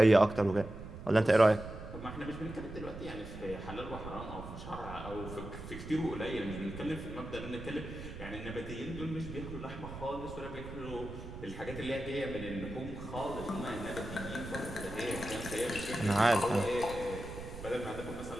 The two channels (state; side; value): noise; right; rumble, 11 dB below the sound